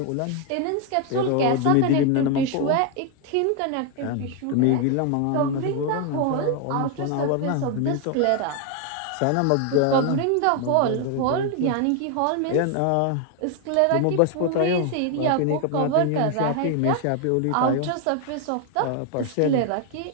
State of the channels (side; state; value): both; different; correlation 0.01